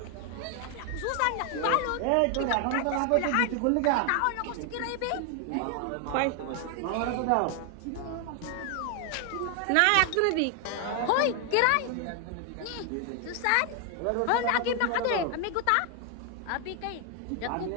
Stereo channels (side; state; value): both; different; correlation 0.00